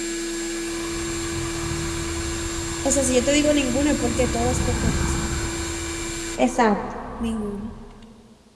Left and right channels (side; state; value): both; identical; correlation 1.00